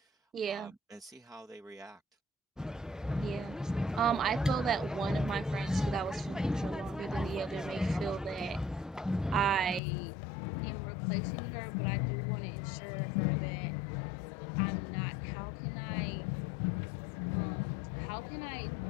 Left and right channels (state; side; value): drops out; right; at 9.8 s